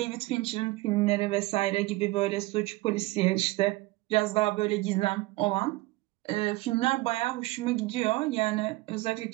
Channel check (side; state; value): left; quieter; 20.5 dB